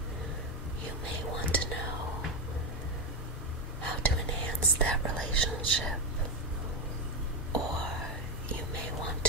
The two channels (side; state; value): both; normal; correlation 0.09